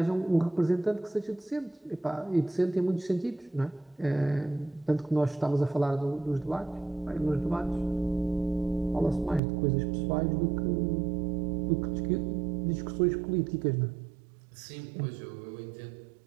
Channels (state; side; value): drops out; left; at 9.4 s